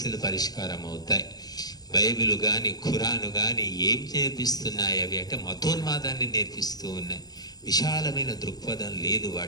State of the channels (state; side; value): late; right; 0.19 ms